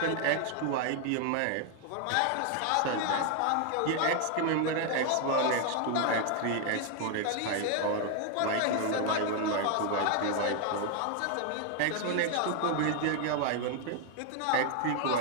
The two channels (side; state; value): both; different; correlation 0.00